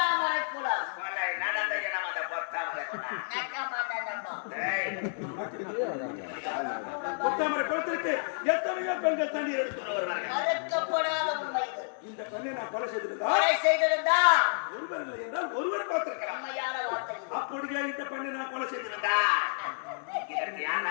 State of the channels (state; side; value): silent; right; digital silence